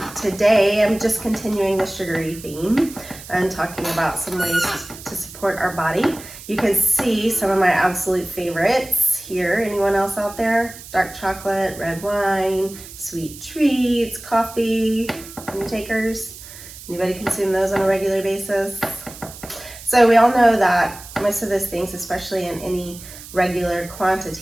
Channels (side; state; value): right; noise; hiss, 16 dB below the sound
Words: Today I'm just continuing the sugary theme and talking about some ways to support our body. You can see some of my absolute favorites here. Anyone else out there? Dark chocolate, red wine, sweet treats, coffee. Any takers? Anybody consume those on a regular basis? So we all know that most of those things, especially in any regular